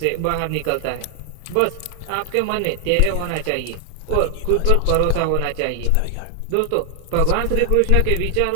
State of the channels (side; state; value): both; different; correlation 0.00